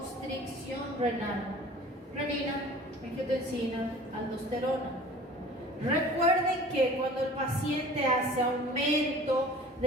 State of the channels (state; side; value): normal; both; correlation 0.44